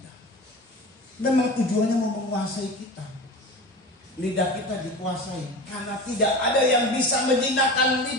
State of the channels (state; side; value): normal; both; correlation 0.32